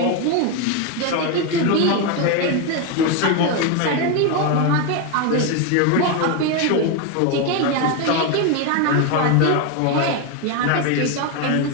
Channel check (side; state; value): both; different; correlation 0.02